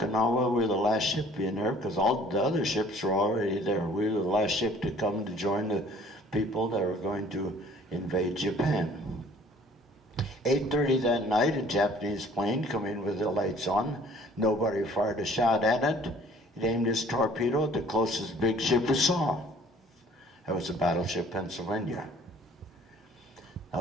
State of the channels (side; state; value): both; normal; correlation 0.53